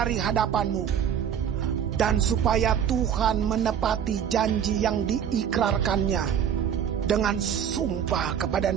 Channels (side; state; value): left; quieter; 8.6 dB